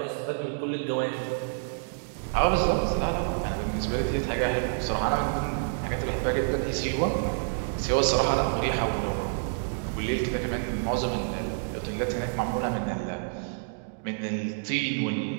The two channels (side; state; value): left; silent; digital silence